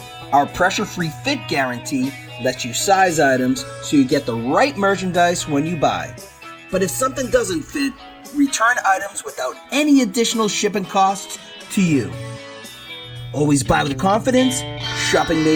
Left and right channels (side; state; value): both; identical; correlation 1.00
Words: Our pressure-free fit guarantee lets you size items so you get the right merchandise when you buy. But if something doesn't fit, return items without any additional shipping costs to you. Always buy with confidence, shopping